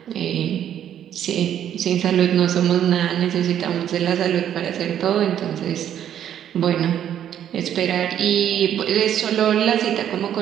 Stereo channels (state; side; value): quieter; left; 10.2 dB